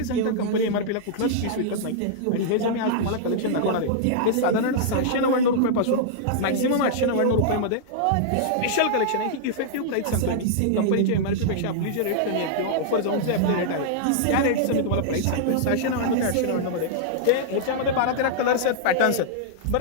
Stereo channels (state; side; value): different; both; correlation -0.02